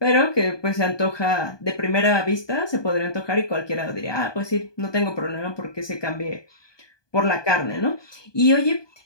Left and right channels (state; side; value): late; right; 1.2 ms